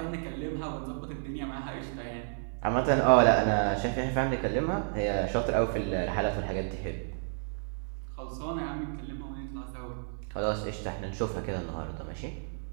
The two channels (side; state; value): left; silent; 57 dB below the other